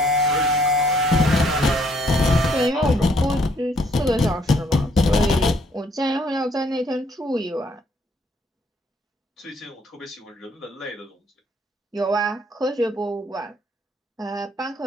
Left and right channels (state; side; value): normal; both; correlation 0.66